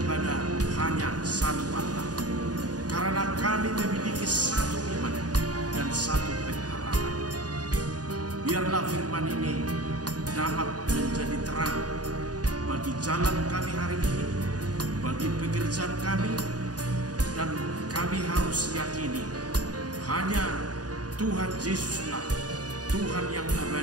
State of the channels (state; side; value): late; left; 0.68 ms